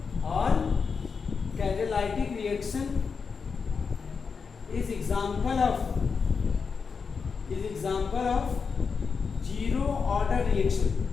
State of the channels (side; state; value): right; quieter; 5.4 dB